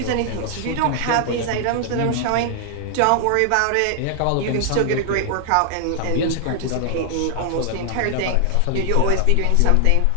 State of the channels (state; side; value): different; both; correlation 0.00